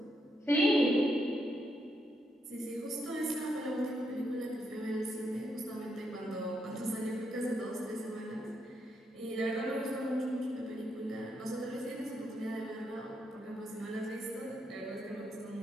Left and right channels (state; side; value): normal; both; correlation 0.79